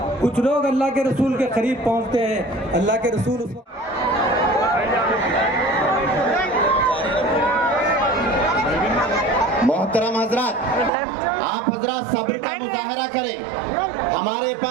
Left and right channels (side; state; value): left; drops out; at 10.9 s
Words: कुछ लोग अल्लाह के रसूल के करीब पहुँचते हैं। अल्लाह के रसूल मोहतरम हजरात, आप हजरात सब्र का मुजाहरा करें। हमारे